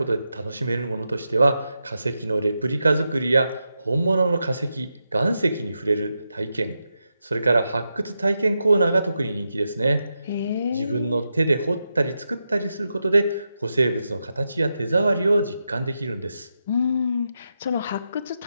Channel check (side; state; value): both; inverted; correlation -0.87